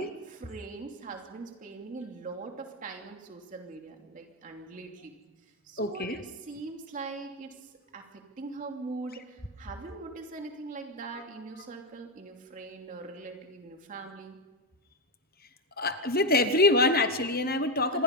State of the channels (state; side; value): normal; both; correlation 0.07